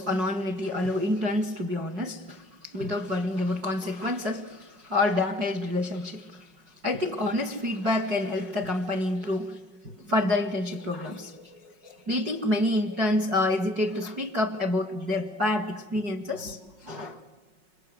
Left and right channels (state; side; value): late; left; 5.4 ms